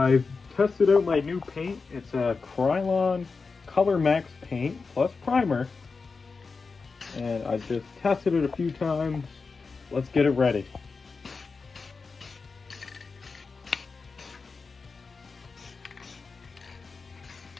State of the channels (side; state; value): right; quieter; 4.6 dB